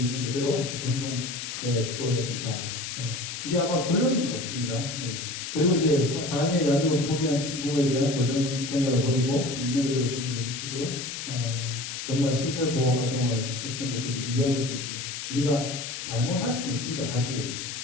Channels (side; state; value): left; noise; hiss, 6 dB below the sound